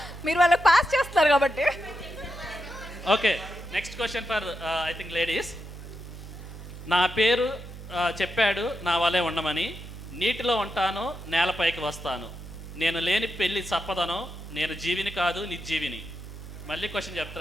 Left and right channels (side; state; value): right; noise; hum, 13 dB below the sound